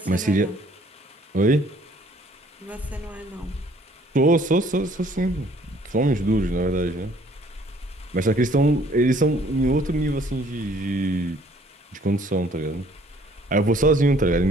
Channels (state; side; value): normal; both; correlation 0.59